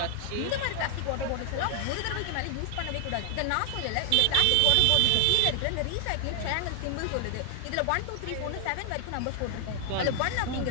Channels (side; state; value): both; different; correlation 0.00